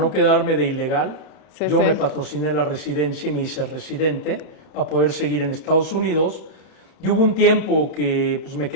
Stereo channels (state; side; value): late; right; 31 ms